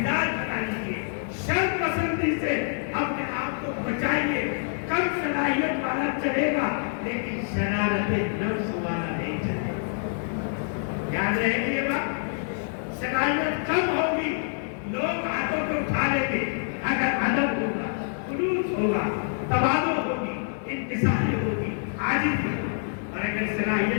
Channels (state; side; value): silent; right; digital silence